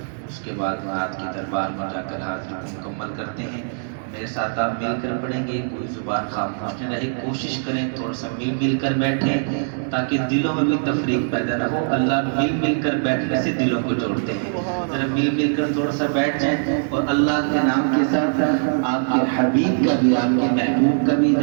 اس کے بعد نعت کی دربار میں جا کر حاضری مکمل کرتے ہیں۔ میرے ساتھ آپ مل کر پڑھیں گے، کوئی زبان خاموش نہ رہے، کوشش کریں تھوڑا سا مل کر بیٹھیں تاکہ دلوں میں بھی تفریق پیدا نہ ہو۔ اللہ مل کر بیٹھنے سے دلوں کو جوڑتے ہیں۔ ذرا مل کر تھوڑا سا بیٹھ جائیں، اور اللہ کے نام کے ساتھ آپ کے حبیب کا بھی، آپ کے محبوب کا بھی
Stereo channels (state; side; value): silent; left; digital silence